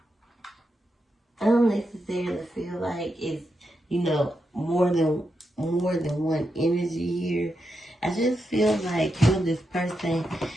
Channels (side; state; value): both; normal; correlation 0.85